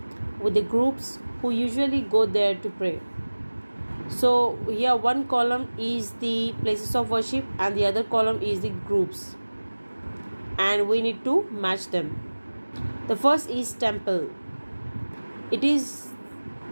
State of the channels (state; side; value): inverted; both; correlation -1.00